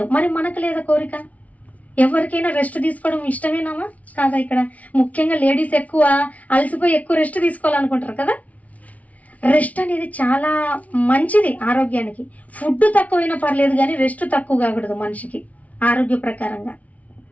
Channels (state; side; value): late; right; 0.069 ms